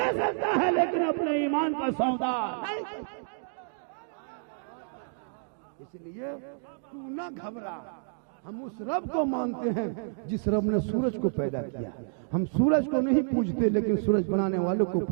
सकता है लेकिन अपने ईमान का सौदा नहीं। इसलिए तू ना घबरा, हम उस रब को मानते हैं जिस रब ने सूरज को पैदा किया। हम सूरज को नहीं पूजते लेकिन सूरज बनाने वालों को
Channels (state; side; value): silent; left; digital silence